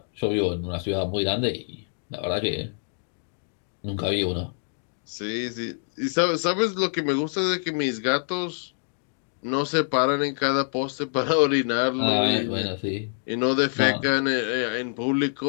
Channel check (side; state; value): right; silent; digital silence